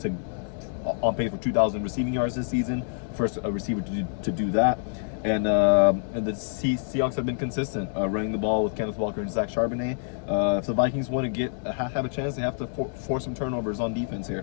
receiving yards this season. First receiver to do that. And the Seahawks have been consistent running the ball with Kenneth Walker and Zach Charbonnet. If the Vikings want to have a chance, they have to force some turnovers on defense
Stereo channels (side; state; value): right; silent; digital silence